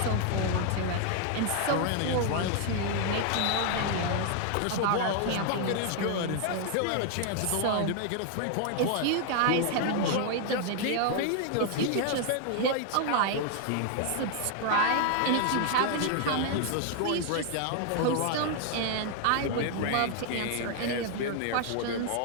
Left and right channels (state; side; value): different; both; correlation 0.00